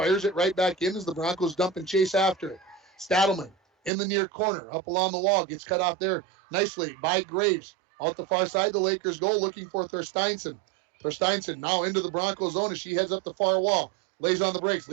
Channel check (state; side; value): drops out; left; at 3.9 s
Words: it right back in as the Broncos dump and chase after it. Stadelman in the near corner, up along the wall, gets cut off there nicely by Graves. Out the far side, the Lakers go looking for Thorsteinson. Thorsteinson now into the Broncos zone as she heads up the far wall. Lays on the brakes,